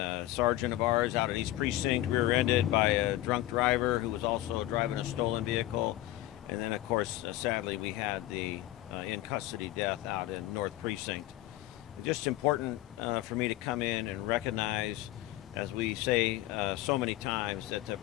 sergeant of ours out at East Precinct rear-ended by a drunk driver who was also driving a stolen vehicle. And then, of course, sadly, we had the in custody death out in North Precinct. Just important for me to come in and recognize, as we say so many times, that the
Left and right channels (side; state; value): right; quieter; 15.6 dB